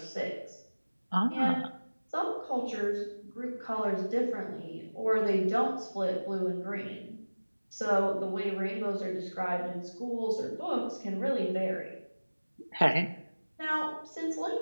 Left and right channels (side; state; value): both; inverted; correlation -1.00